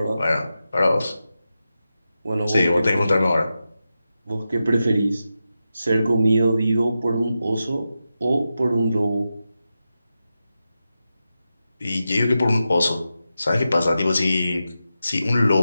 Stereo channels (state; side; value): inverted; both; correlation -0.90